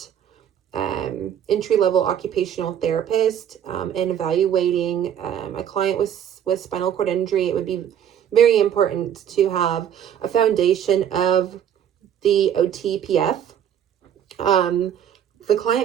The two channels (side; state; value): left; quieter; 9.5 dB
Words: entry-level occupational therapist and evaluating a client with spinal cord injury, it would be very important to have a foundation of the OTPF. The